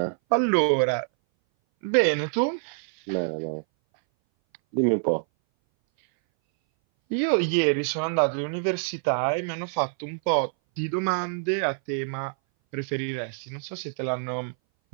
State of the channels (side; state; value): left; silent; 59 dB below the other